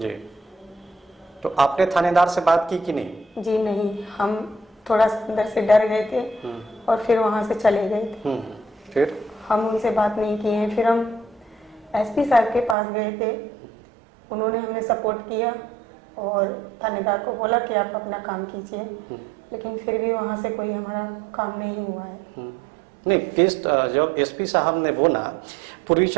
तो आपने थानेदार से बात की कि नहीं? जी नहीं, हम थोड़ा अंदर से डर गए थे और फिर वहाँ से चले गए थे। फिर हम उनसे बात नहीं की है। फिर हम एसपी साहब के पास गए थे, उन्होंने हमें सपोर्ट किया और थानेदार को बोला कि आप अपना काम कीजिए। लेकिन फिर भी वहाँ से कोई हमारा काम नहीं हुआ है। नहीं, केस जब एसपी साहब ने बोला, पूर्वी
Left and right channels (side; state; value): left; drops out; at 12.8 s